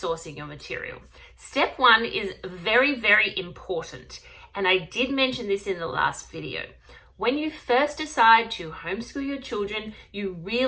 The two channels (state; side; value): identical; both; correlation 1.00